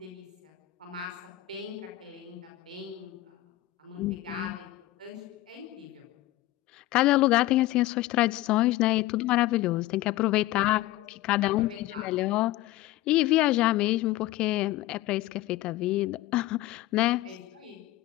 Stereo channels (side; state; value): right; quieter; 16.7 dB